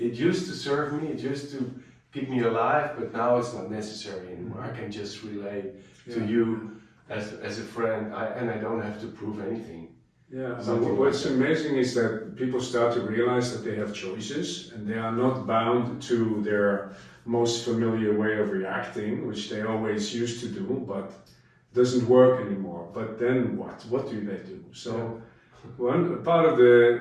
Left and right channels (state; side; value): identical; both; correlation 1.00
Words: used to serve me, it used to keep me alive, but now it's not necessary anymore. I can just relate to you as a friend, and I don't have to prove anything. Yeah, so what's amazing is that people start to realize that they have choices, and they are not bound to their most familiar way of reacting, which they always used to do, but doesn't work anymore. But then what? What do they do? So one part of